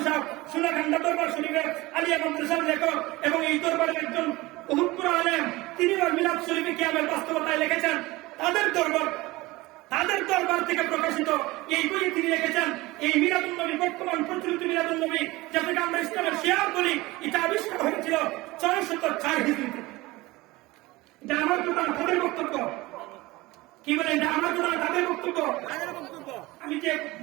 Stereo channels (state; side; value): quieter; left; 20.5 dB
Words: সাহেব সুনাগন্ধা দরবার শরীফের আলিয়া মাদ্রাসার লেখক এবং এই দরবারের একজন বহুপুর আলেম, তিনি মিলাদ শরীফে কিয়ামের বাস্তবতায় লিখেছেন। তাদের দরবার থেকে প্রকাশিত এই বইয়ে তিনি লিখেছেন, এই মিলাদুন নবী, বর্তমান প্রচলিত মিলাদুন নবী, যাকে আমরা ইসলামের শিয়ার বলি, এটা আবিষ্কার হয়েছিল 604 হিজরিতে। এটা আমার কথা, তাদের বক্তব্য। কি বলে, এটা আমার কথা, তাদের বক্তব্য। আমি যে